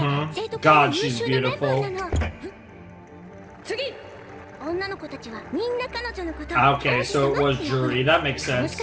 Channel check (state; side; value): identical; both; correlation 1.00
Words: God, she's beautiful. Okay, so it was Juri. That makes sense.